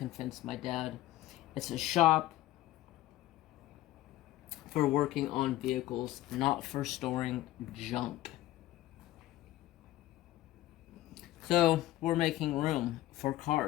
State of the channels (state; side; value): quieter; right; 15.5 dB